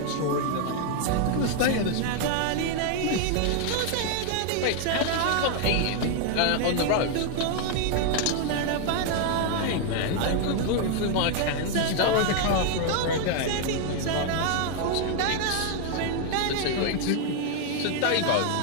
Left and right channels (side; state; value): both; different; correlation 0.00